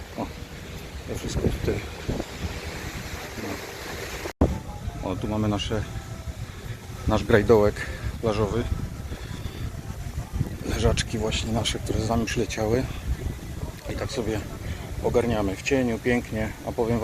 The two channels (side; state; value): both; identical; correlation 1.00